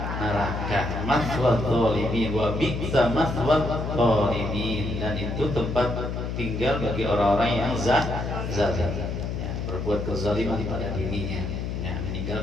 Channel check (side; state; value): left; noise; hum, 4 dB below the sound